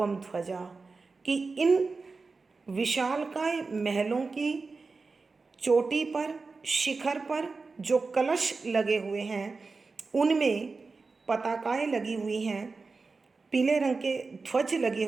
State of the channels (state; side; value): quieter; left; 4.2 dB